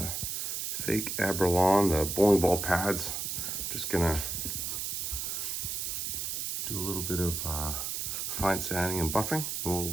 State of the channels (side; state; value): right; noise; hiss, 2 dB below the sound